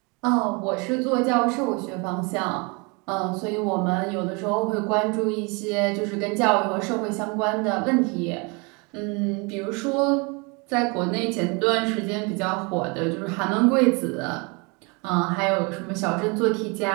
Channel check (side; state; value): left; quieter; 30.4 dB